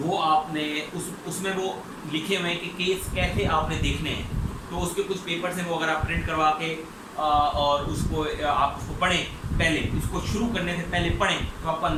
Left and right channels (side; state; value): both; identical; correlation 1.00